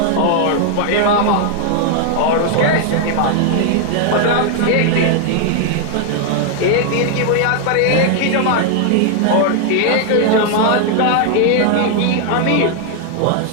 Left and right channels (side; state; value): both; different; correlation 0.00